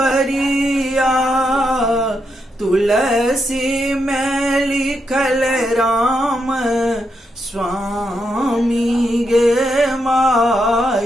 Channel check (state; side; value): normal; both; correlation 0.82